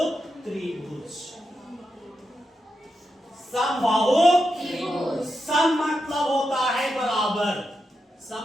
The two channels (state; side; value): normal; both; correlation 0.87